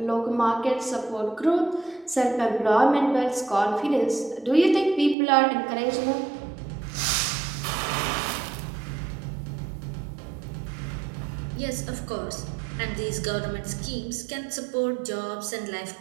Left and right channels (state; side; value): drops out; left; at 5.2 s